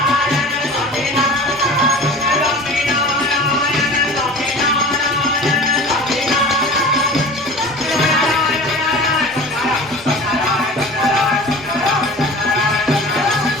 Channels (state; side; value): normal; both; correlation 0.39